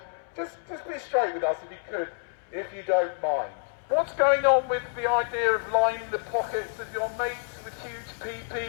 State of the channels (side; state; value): right; silent; 59 dB below the other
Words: just be straight with us if you could, if you don't mind. What's going on with the idea of lining the pockets of your mates with huge